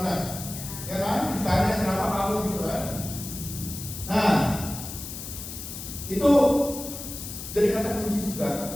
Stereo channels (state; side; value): noise; left; hiss, 9 dB below the sound